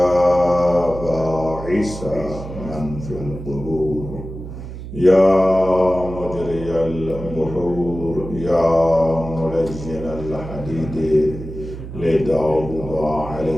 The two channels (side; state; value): right; noise; hum, 10 dB below the sound